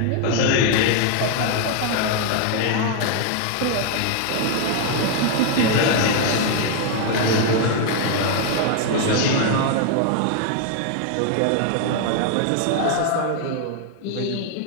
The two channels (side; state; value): both; different; correlation 0.00